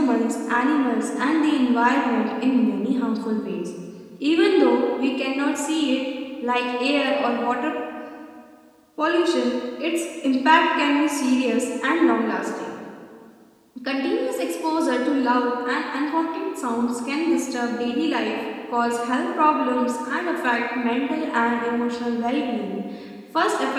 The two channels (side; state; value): both; identical; correlation 1.00